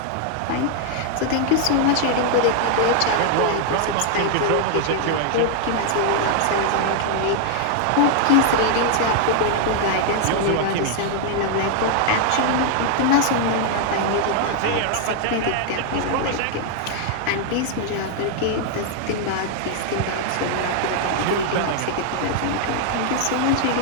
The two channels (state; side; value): different; both; correlation 0.00